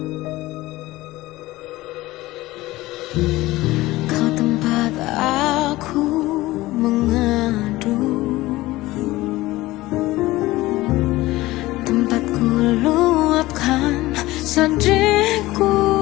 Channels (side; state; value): right; quieter; 18.3 dB